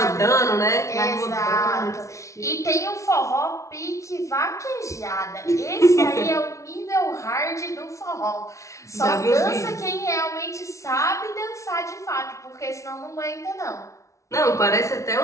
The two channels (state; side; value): late; right; 0.14 ms